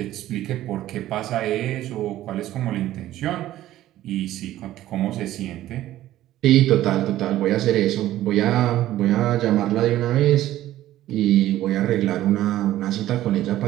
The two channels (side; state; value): left; quieter; 14.1 dB